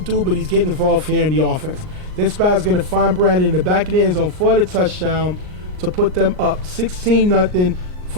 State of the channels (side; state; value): left; late; 39 ms